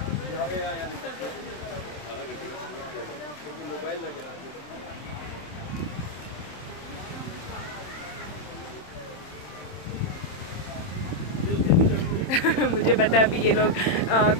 मुझे पता है अभी ये लोग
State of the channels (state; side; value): late; right; 27 ms